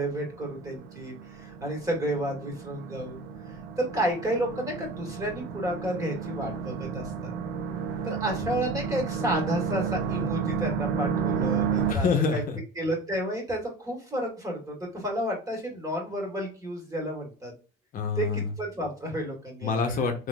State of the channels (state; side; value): normal; both; correlation 0.35